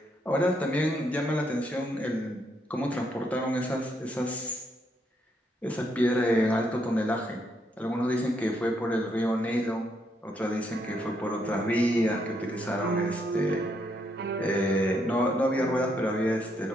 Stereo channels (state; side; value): normal; both; correlation 0.75